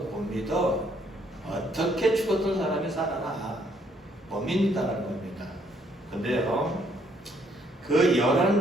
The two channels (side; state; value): both; normal; correlation 0.68